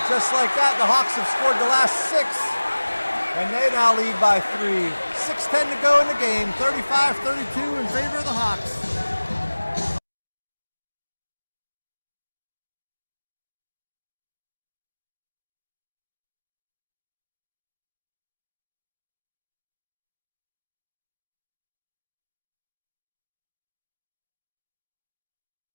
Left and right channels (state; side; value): inverted; both; correlation -1.00